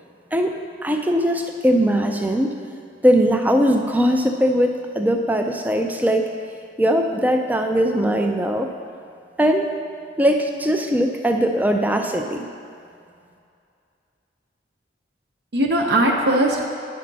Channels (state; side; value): normal; both; correlation 0.70